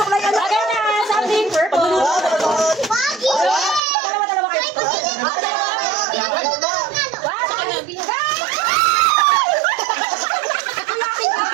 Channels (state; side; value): drops out; left; at 3.8 s